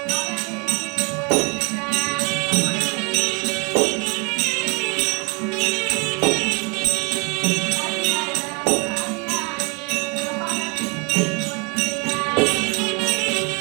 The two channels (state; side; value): quieter; left; 30.8 dB